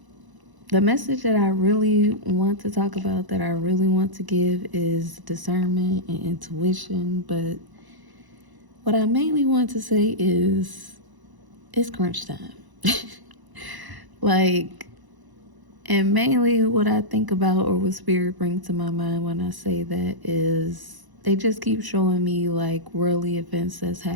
The message that I really want to talk about, that I really want to give, is discernment and intuition. But what I mainly want to say is it's crunch time. And mainly what I think about or what Spirit brings to my mind when I say that is they just keep showing me like worldly events that's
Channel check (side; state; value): left; late; 1.0 ms